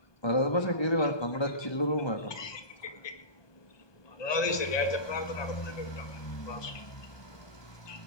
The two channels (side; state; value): right; late; 1.2 ms